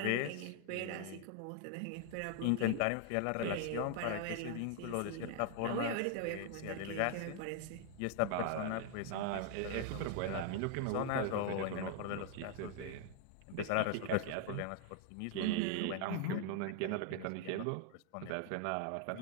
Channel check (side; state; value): both; different; correlation 0.00